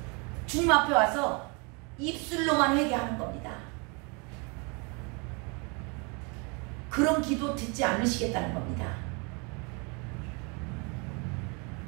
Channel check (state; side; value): quieter; left; 32.1 dB